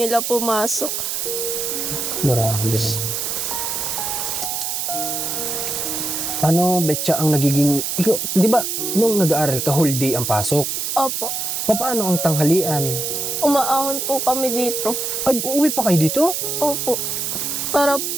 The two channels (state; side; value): noise; right; hiss, 2 dB below the sound